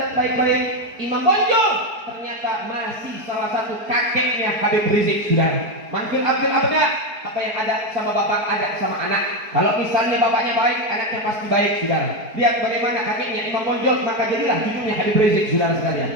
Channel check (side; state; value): left; late; 4.6 ms